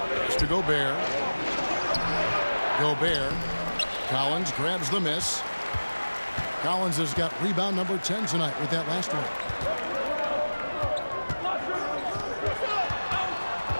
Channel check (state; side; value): inverted; both; correlation -1.00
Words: It's to Gobert. Gobert. Collins grabs the miss. Collins has got rebound number 10 tonight with that last one.